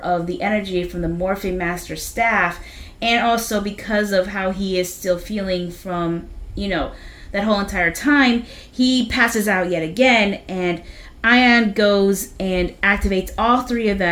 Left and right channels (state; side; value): identical; both; correlation 1.00